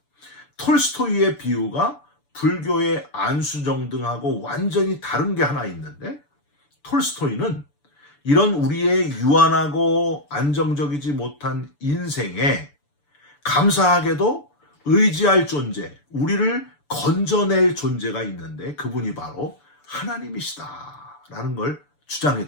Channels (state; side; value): late; right; 6.9 ms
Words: 톨스토이의 비유가 불교의 안수정등하고 완전히 다른 게 하나 있는데 톨스토이는 이런 우리의 유한하고 안정적이지 못한 인생에 감사하게도 의지할 존재, 우리를 건져낼 존재가 있는데 그분이 바로 하나님이시다라는 걸